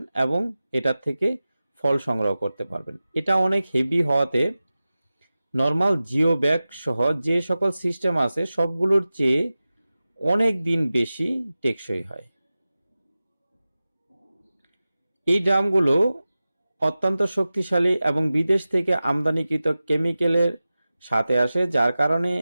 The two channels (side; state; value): both; inverted; correlation -0.95